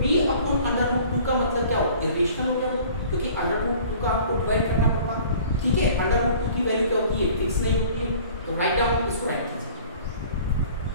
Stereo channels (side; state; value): both; inverted; correlation -0.49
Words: b/√2 का मतलब क्या हो? इरेशनल हो गया, क्योंकि √2 का आपको डिवाइड करना पड़ता, ठीक है। √2 की वैल्यू क्या होती है? फिक्स नहीं होती है। तो राइट डाउन, इसको राइट कीजिए।